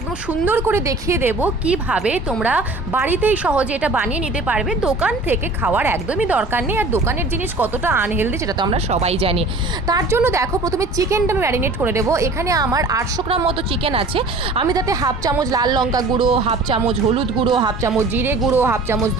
সুন্দর করে দেখিয়ে দেবো কিভাবে তোমরা বাড়িতেই সহজে এটা বানিয়ে নিতে পারবে। দোকান থেকে খাওয়ার একদমই দরকার নেই, আর দোকানের জিনিস কতটা আনহেলদি সেটা তো আমরা সবাই জানি। তার জন্য দেখো, প্রথমে চিকেনটা আমি ম্যারিনেট করে দেবো। এখানে আমার 800 গ্রাম মতো চিকেন আছে। আমি তাতে হাফ চামচ লাল লঙ্কা গুঁড়ো, হাফ চামচ হলুদ গুঁড়ো, হাফ চামচ জিরে গুঁড়ো, হাফ চামচ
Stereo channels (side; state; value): left; quieter; 3.1 dB